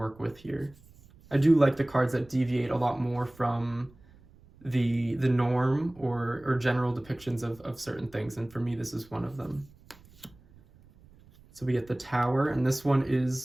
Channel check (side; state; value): right; noise; rumble, 26 dB below the sound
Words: with here. I do like the cards that deviate a lot more from the norm or general depictions of certain things, and for me this is one of them. So we get the Tower, and this one